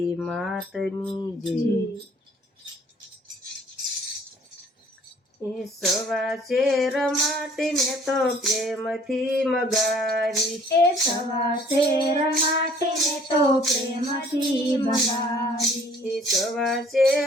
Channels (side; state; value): both; normal; correlation 0.57